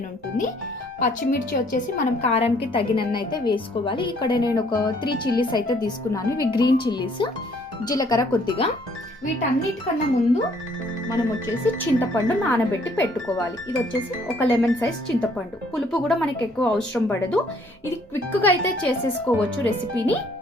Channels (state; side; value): normal; both; correlation 0.63